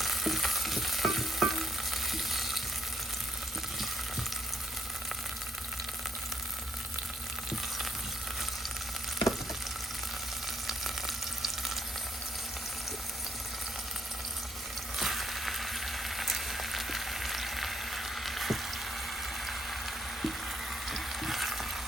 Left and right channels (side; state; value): both; normal; correlation 0.71